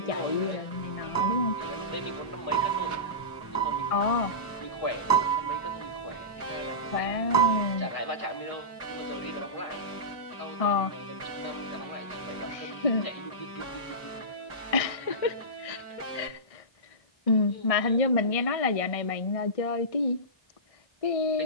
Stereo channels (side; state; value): right; late; 1.6 ms